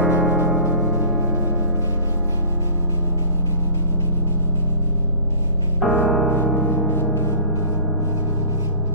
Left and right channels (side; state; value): both; inverted; correlation -0.44